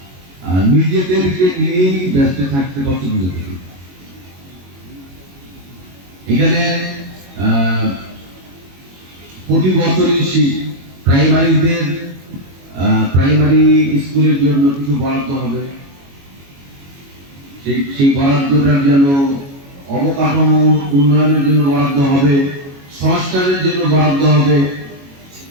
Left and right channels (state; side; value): late; left; 22 ms